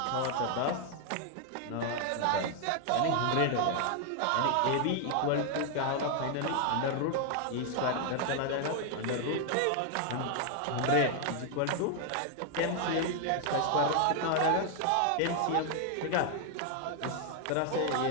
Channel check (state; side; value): different; both; correlation 0.00